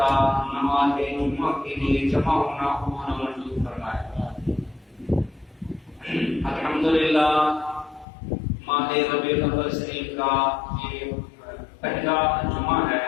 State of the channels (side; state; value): right; drops out; at 8.1 s